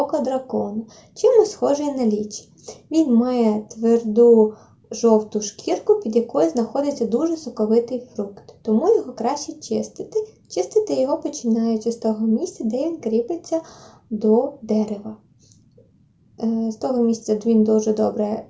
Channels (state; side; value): identical; both; correlation 1.00